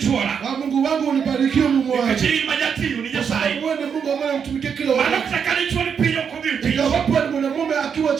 Mungu wangu unibarikiwe Mungu wangu. Kwa sababu wewe ni Mungu ambaye unamtumikia kila wakati. Iwapo ni mwanamume akiwa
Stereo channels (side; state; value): left; quieter; 7.0 dB